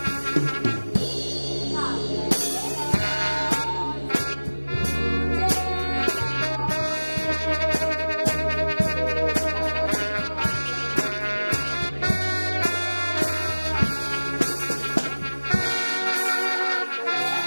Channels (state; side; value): inverted; both; correlation -1.00